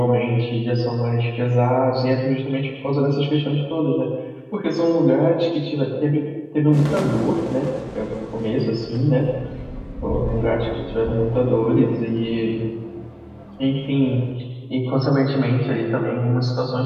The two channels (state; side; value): identical; both; correlation 1.00